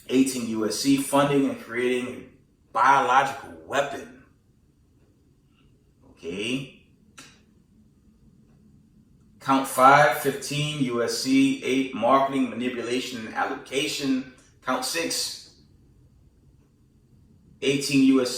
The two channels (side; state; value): both; identical; correlation 1.00